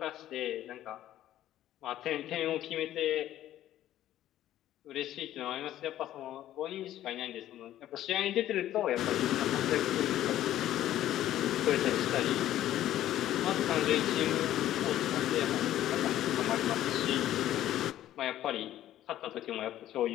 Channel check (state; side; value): quieter; right; 12.9 dB